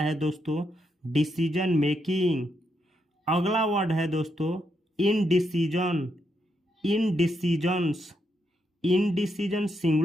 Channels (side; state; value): both; normal; correlation 0.80